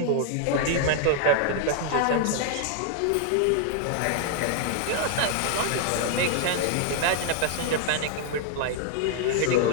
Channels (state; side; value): different; both; correlation 0.00